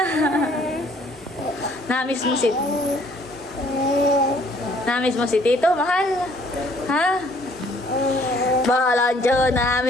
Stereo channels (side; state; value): both; normal; correlation 0.60